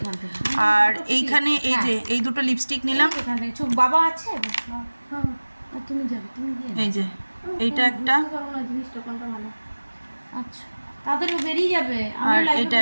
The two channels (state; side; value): inverted; both; correlation -1.00